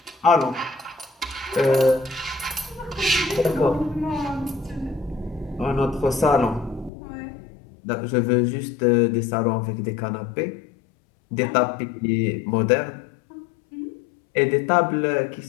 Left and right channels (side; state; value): right; drops out; at 6.9 s